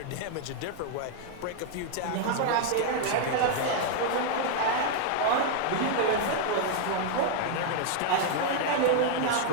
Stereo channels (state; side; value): different; both; correlation 0.00